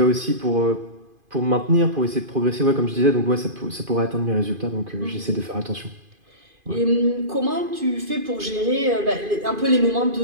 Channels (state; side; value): late; left; 2.5 ms